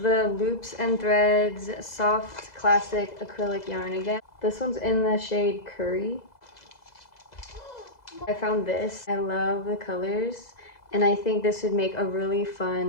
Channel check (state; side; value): late; right; 2.0 ms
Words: the Loops and Threads soft classic acrylic yarn again. This one's in the shade Curry. I found this. I love the colors, and I think this would make a really